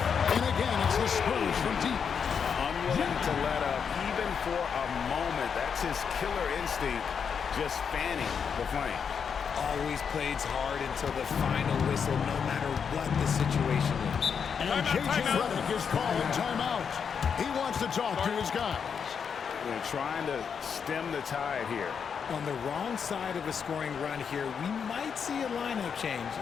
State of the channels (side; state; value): right; quieter; 6.7 dB